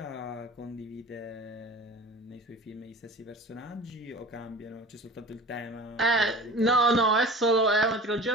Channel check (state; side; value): normal; both; correlation 0.39